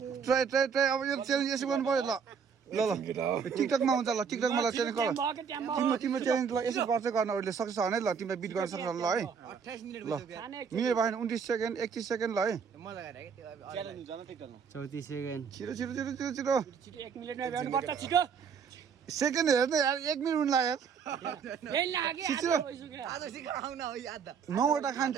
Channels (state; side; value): quieter; left; 6.5 dB